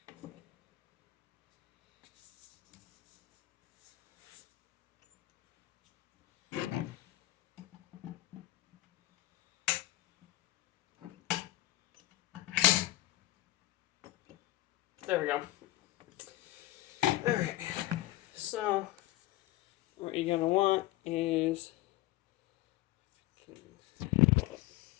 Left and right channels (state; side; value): quieter; right; 17.7 dB